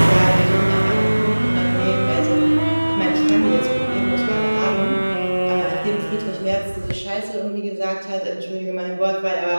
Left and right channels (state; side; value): inverted; both; correlation -1.00